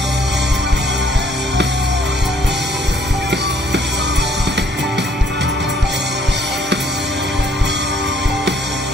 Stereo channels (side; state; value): both; normal; correlation 0.64